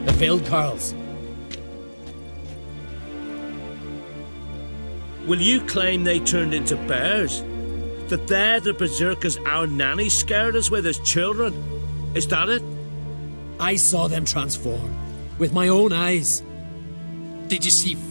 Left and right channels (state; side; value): inverted; both; correlation -1.00